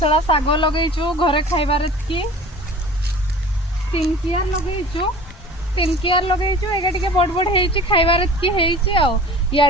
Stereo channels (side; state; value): both; normal; correlation 0.41